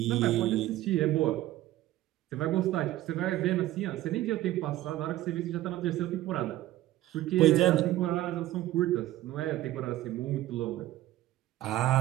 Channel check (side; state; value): left; quieter; 15.2 dB